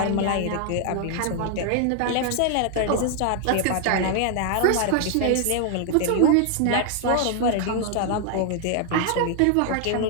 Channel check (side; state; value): both; different; correlation 0.00